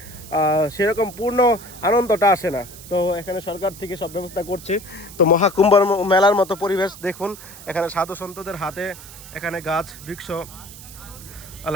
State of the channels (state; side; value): noise; right; hiss, 16 dB below the sound